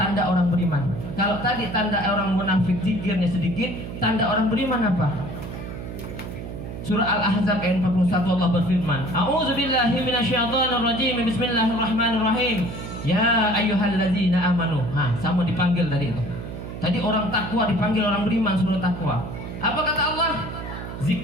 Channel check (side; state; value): right; noise; hum, 9 dB below the sound